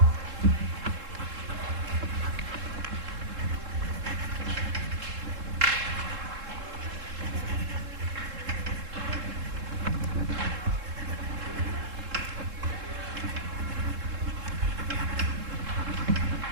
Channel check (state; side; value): late; left; 3.7 ms